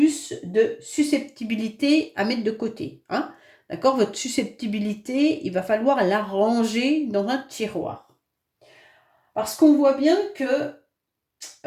de susceptibilité à mettre de côté, hein? D'accord? Votre susceptibilité, il va falloir la ranger dans un tiroir. Parce qu'on voit bien que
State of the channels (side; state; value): both; identical; correlation 1.00